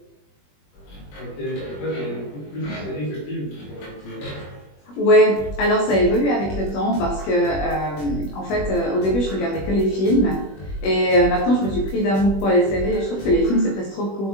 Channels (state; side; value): late; right; 21 ms